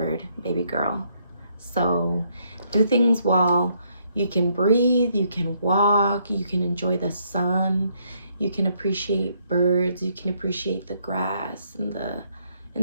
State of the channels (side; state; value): both; inverted; correlation -0.71